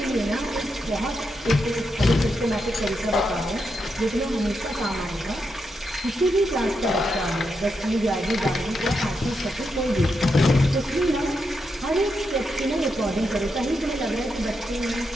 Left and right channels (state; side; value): normal; both; correlation 0.84